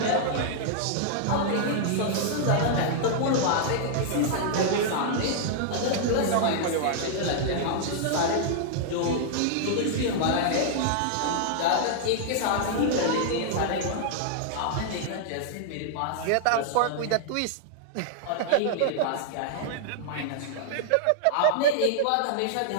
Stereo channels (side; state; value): both; different; correlation -0.01